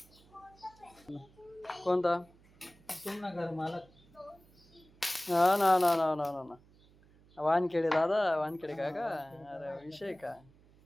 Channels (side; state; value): right; noise; hum, 28 dB below the sound